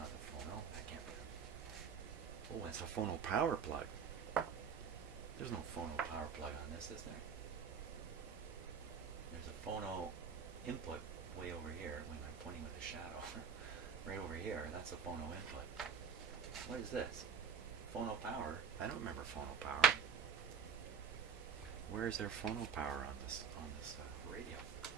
the phono. That can't be the... Oh, that's a phono power plug. There's no phono power plug on this, is there? There's a phono input way over here. When I'm pointing with a shadow. Right over here, that's a phono input. What is this? Phono power? I don't remember phono power. Where is there phono power on this radio?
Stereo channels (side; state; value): left; quieter; 6.3 dB